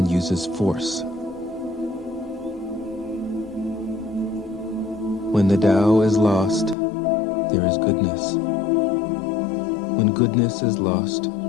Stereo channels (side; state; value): right; drops out; at 6.8 s